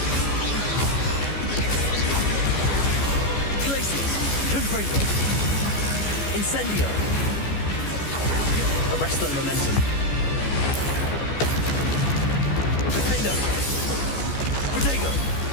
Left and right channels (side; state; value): right; late; 14 ms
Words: Glacius! Confringo! Incendio! Arresto momentum. Defendo! Protego!